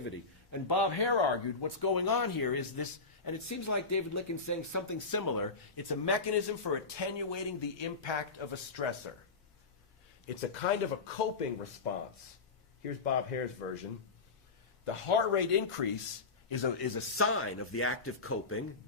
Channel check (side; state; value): right; quieter; 4.1 dB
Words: And Bob Hare argued what's going on here is this, and it seems like David Licken's saying something similar. It's a mechanism for attenuating the impact of a stressor. It's a kind of a coping response. Here's Bob Hare's version. The heart rate increase is a sign of the active coping,